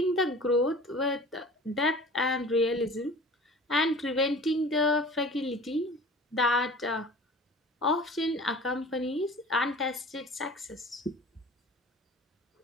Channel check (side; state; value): both; normal; correlation 0.43